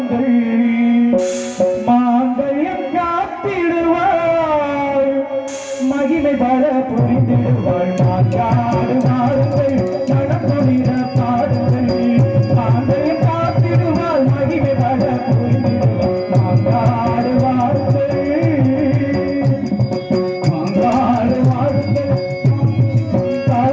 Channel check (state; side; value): identical; both; correlation 1.00